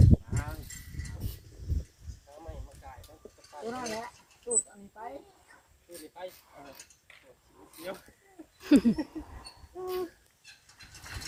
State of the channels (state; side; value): identical; both; correlation 1.00